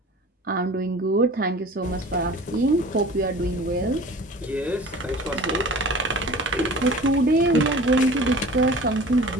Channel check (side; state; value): both; normal; correlation 0.42